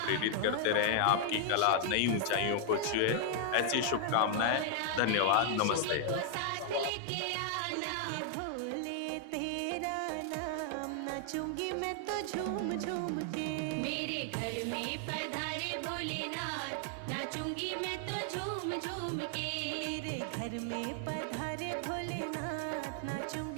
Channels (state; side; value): different; both; correlation 0.00